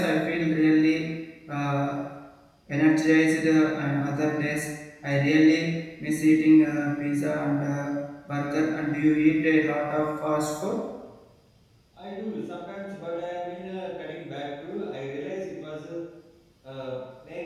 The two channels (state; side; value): identical; both; correlation 1.00